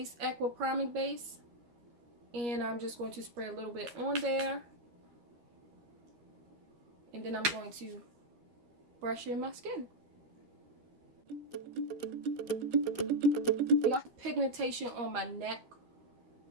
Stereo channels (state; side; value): late; left; 13 ms